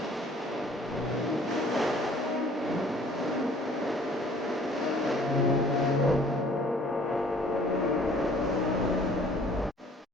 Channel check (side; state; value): both; normal; correlation 0.54